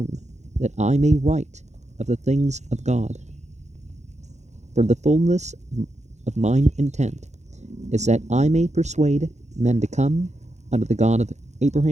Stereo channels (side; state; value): left; late; 0.33 ms